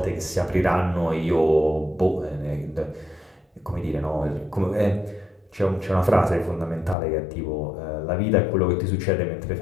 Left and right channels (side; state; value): right; drops out; at 7.0 s